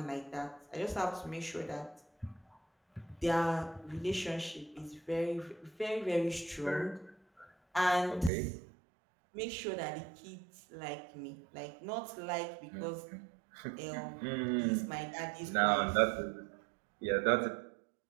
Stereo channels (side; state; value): left; drops out; at 8.3 s